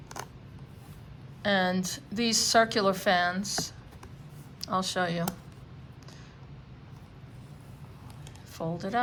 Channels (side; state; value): both; identical; correlation 1.00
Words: And these circular fans, I'll show you. Fold it